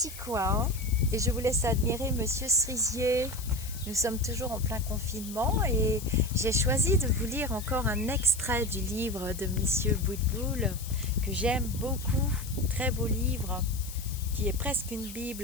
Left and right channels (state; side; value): noise; left; hiss, 13 dB below the sound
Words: coin et je vous laisse admirer Monsieur Cerisier. Nous sommes toujours en plein confinement et j'ai choisi de vous lire encore un extrait du livre de Monsieur Boutboul que j'aime beaucoup. Très beau livre qui est presque une